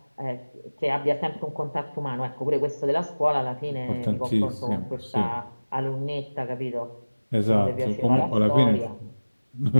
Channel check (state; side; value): inverted; both; correlation -1.00